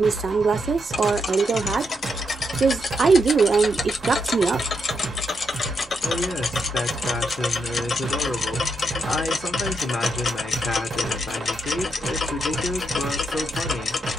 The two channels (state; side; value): normal; both; correlation 0.81